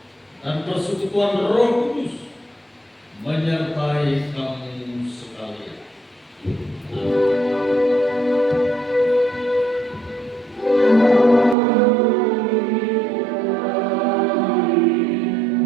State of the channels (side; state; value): left; drops out; at 11.6 s